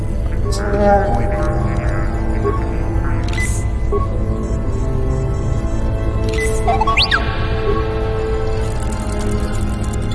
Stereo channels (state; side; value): identical; both; correlation 1.00